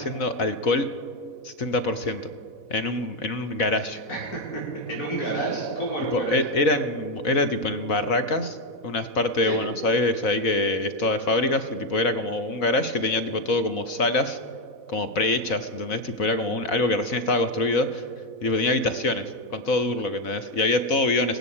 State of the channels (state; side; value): late; right; 4.1 ms